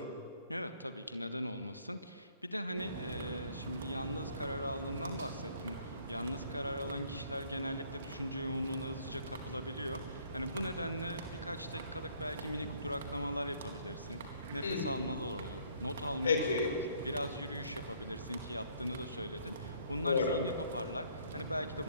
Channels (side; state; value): both; inverted; correlation -0.63